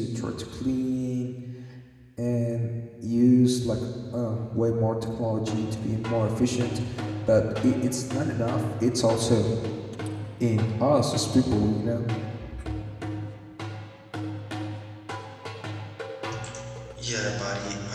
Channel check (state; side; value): identical; both; correlation 1.00